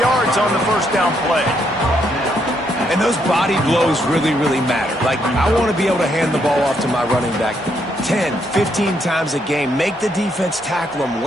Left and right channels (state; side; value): normal; both; correlation 0.75